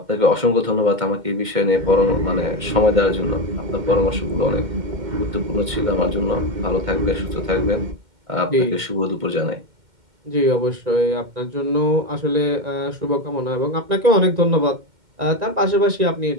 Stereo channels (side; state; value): left; late; 2.1 ms